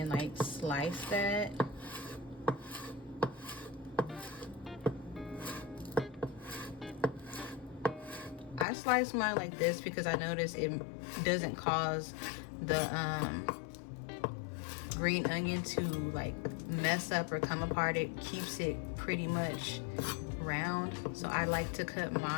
like slice that. I slice mine like this because I notice it doesn't cause the green onion to like mess up or come apart. It keeps it pretty much round. So I like to cut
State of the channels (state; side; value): drops out; right; at 8.7 s